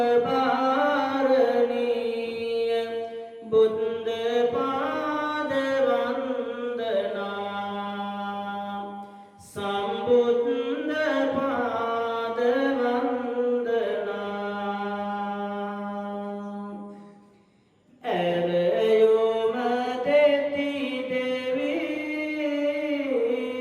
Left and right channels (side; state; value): both; identical; correlation 1.00